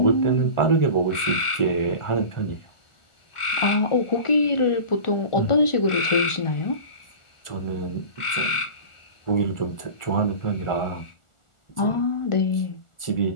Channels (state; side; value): late; right; 1.4 ms